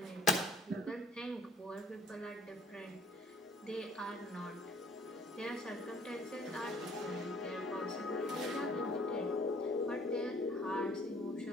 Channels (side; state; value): both; normal; correlation 0.56